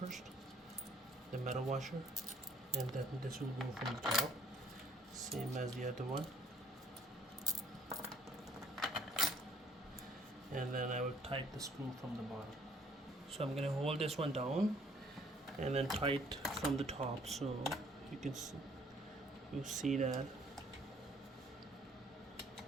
the metal washer, and then this will go from the top, same as the other one. And then I will tighten the screw from the bottom. So I'm going to hold this one down and then tight from the top, so you can see that.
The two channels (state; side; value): normal; both; correlation 0.61